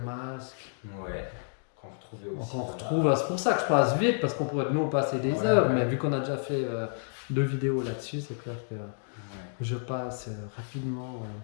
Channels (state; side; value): silent; right; digital silence